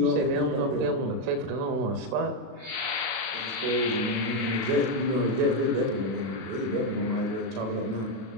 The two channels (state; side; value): late; left; 36 ms